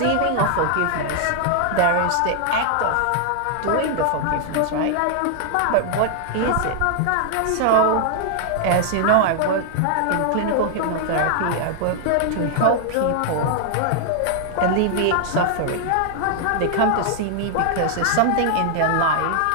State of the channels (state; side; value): different; both; correlation -0.01